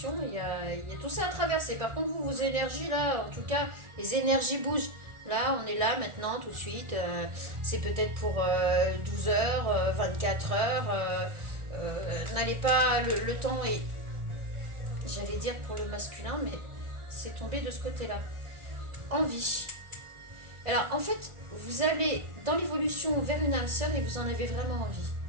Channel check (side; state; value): left; late; 1.4 ms